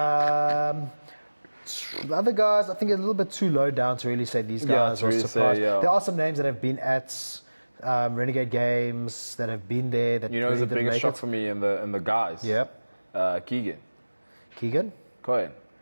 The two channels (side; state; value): both; inverted; correlation -1.00